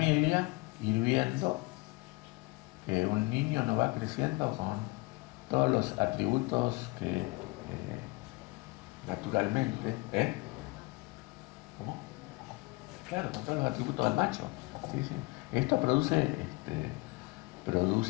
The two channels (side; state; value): right; quieter; 24.6 dB